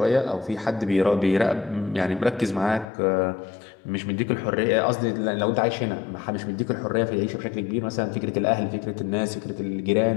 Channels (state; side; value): drops out; right; at 2.9 s